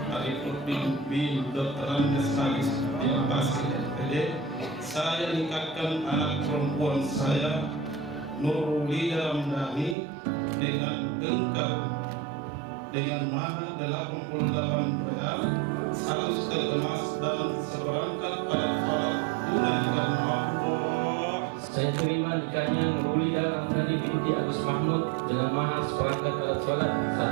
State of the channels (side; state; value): left; drops out; at 10.0 s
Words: Arifudin bin Dr. Andes Halis bin Basir SPD, saya nikahkan anak perempuan saya Nurulida Ramdhani dengan engkau dengan mahar 88 real, 100 tel emas dan seperangkat alat sholat tunai karena Allah. Saya terima nikahnya Nurulida Ramdhani binti Agus Mahmud dengan mahar seperangkat alat sholat,